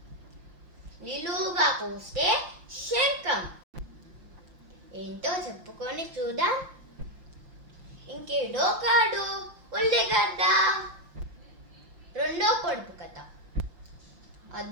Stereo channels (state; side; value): late; left; 5.8 ms